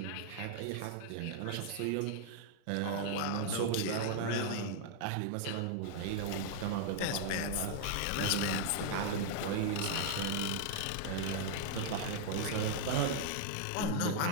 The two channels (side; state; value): both; different; correlation -0.01